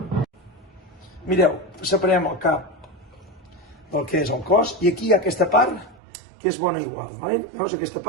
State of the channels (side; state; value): left; drops out; at 6.0 s